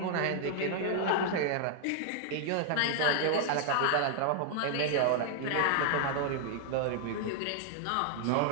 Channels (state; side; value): different; both; correlation 0.00